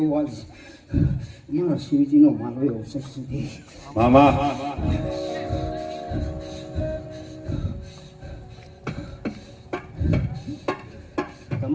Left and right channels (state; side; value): identical; both; correlation 1.00